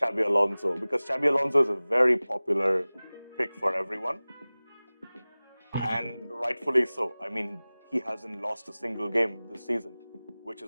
Alonso because Xabi Alonso is a very popular pick for everyone, and rightfully so. I mean, he hasn't lost a single game this season, which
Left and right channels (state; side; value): inverted; both; correlation -0.99